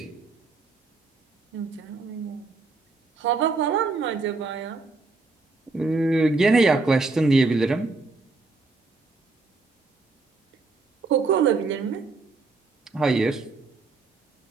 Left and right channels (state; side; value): quieter; left; 3.7 dB